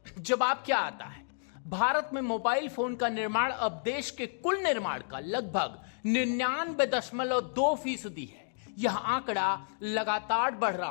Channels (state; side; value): silent; right; digital silence